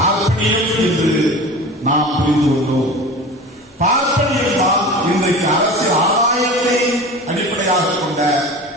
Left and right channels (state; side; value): normal; both; correlation 0.35